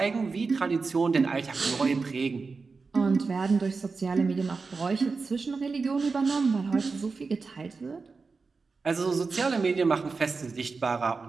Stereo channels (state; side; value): quieter; left; 4.4 dB